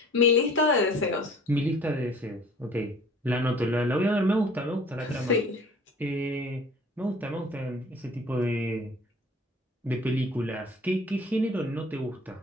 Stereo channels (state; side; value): normal; both; correlation 0.49